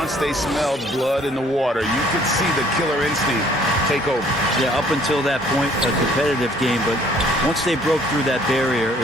they smelled blood in the water, you could see the killer instinct take over. Yeah, up until that point, a competitive game, but once they broke through that barrier,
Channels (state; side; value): normal; both; correlation 0.59